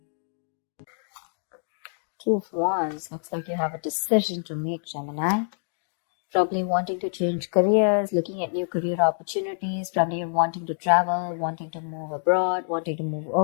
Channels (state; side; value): silent; right; digital silence